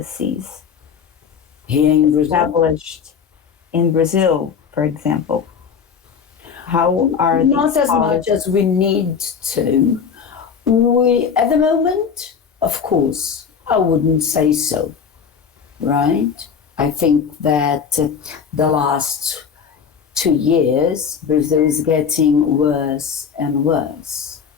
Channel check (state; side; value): quieter; right; 6.7 dB